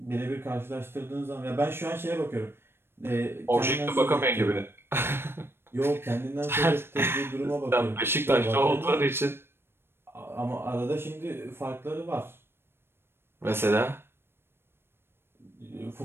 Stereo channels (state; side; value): late; left; 0.11 ms